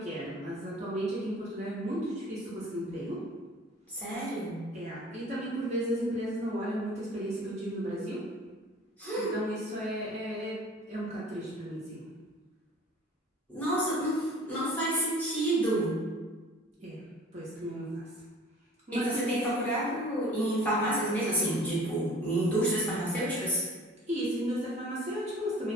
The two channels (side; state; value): both; normal; correlation 0.47